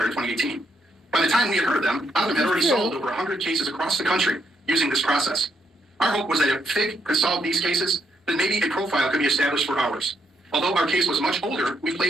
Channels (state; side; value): normal; both; correlation 0.76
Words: in 2018. By the time we had heard of them, Othram had already solved over 100 cases across the country using this process. Our hope was that if FIG could solve these cases, then maybe a profile could be established for ours. Although our case was much older, we